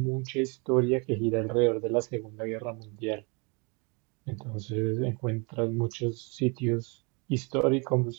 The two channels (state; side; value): quieter; left; 31.8 dB